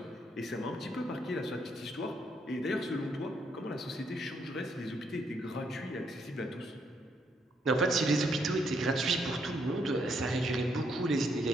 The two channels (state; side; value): normal; both; correlation 0.74